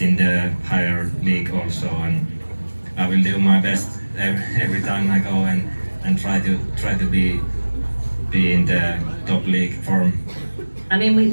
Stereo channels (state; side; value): inverted; both; correlation -1.00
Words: the higher league also, and I will do my best every time I go and try to be in the top league form. I mean,